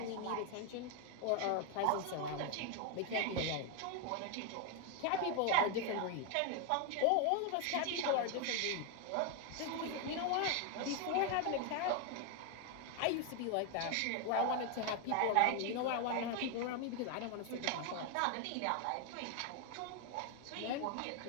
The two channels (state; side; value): different; both; correlation 0.01